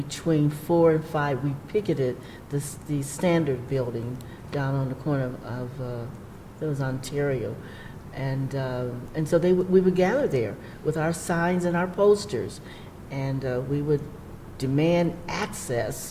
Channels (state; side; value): identical; both; correlation 1.00